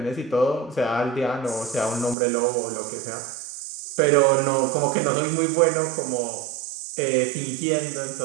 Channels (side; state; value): left; drops out; at 2.1 s